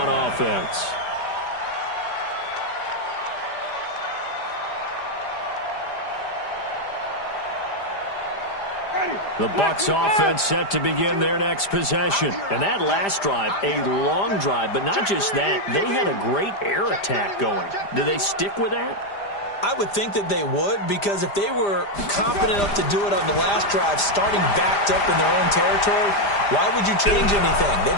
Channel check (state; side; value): late; right; 5.0 ms